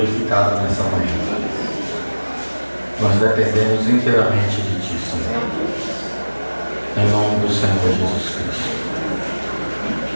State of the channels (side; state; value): both; inverted; correlation -1.00